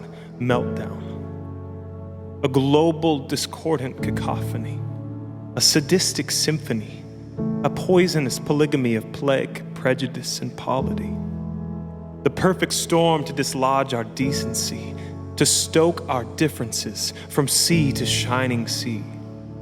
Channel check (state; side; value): identical; both; correlation 1.00